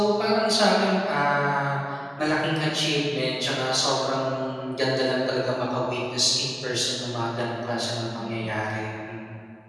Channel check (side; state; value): both; identical; correlation 1.00